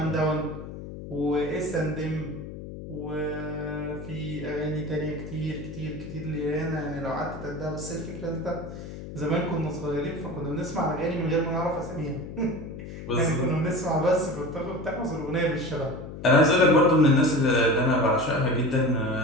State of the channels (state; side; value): noise; left; hum, 11 dB below the sound